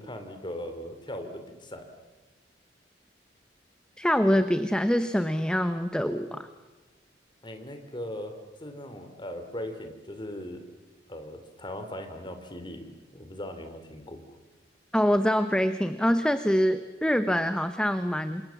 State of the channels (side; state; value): both; normal; correlation 0.93